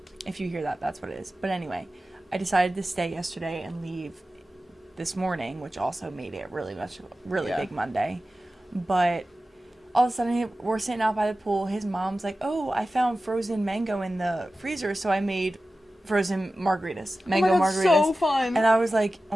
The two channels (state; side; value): normal; both; correlation 0.95